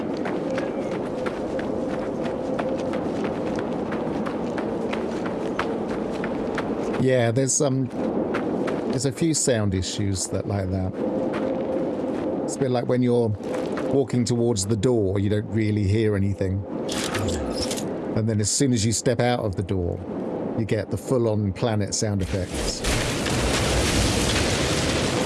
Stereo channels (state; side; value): identical; both; correlation 1.00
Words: Yeah, there's a few sound issues that like that. It's a bit like when you're walking towards the door, you don't really hear anything. And then as soon as you step out of the door, you get the full-on planet sound effects.